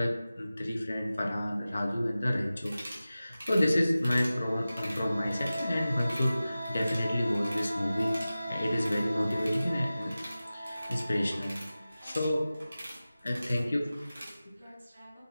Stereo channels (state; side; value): inverted; both; correlation -0.96